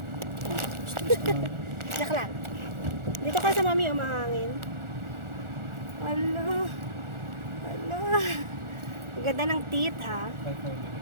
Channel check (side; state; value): left; late; 1.4 ms